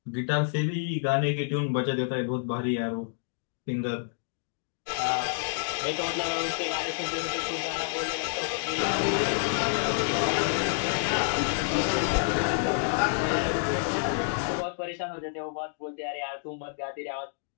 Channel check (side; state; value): right; silent; digital silence